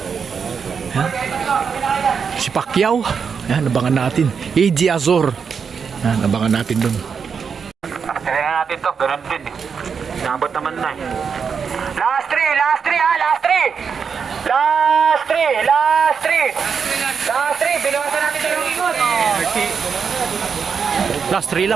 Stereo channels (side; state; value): left; quieter; 6.2 dB